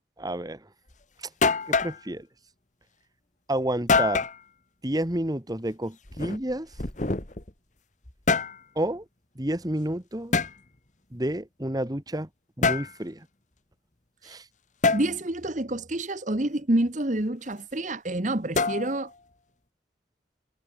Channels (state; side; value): normal; both; correlation 0.34